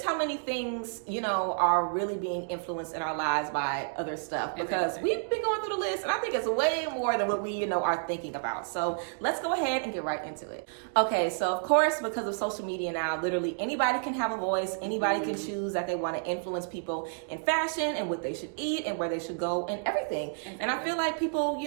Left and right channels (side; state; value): left; silent; digital silence